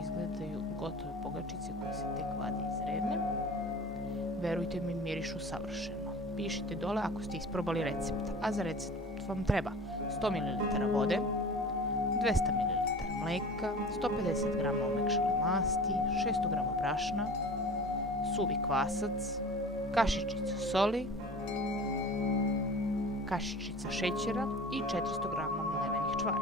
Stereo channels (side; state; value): both; normal; correlation 0.39